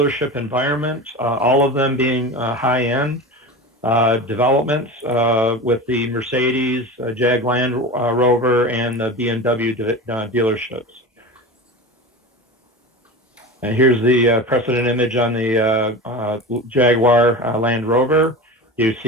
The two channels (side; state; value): both; normal; correlation 0.29